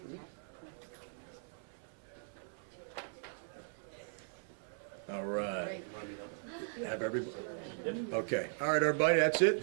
All right. Great. Have everybody. Okay. All right, everybody. That's it.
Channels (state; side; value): silent; left; 52 dB below the other